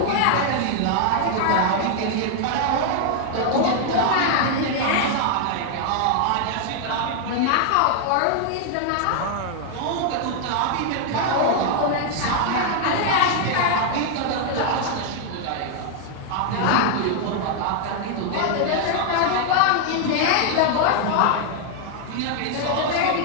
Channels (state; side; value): different; both; correlation 0.00